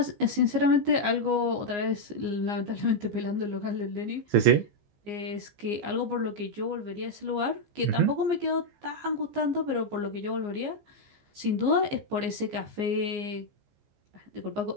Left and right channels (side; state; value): left; late; 15 ms